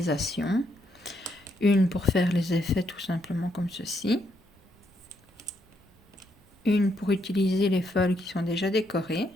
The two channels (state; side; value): normal; both; correlation 0.76